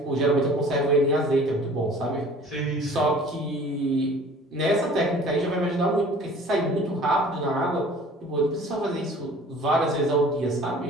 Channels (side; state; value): both; normal; correlation 0.48